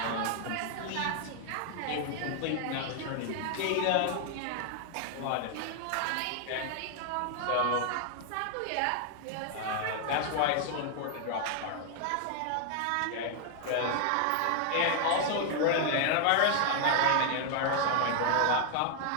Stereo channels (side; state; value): both; different; correlation 0.00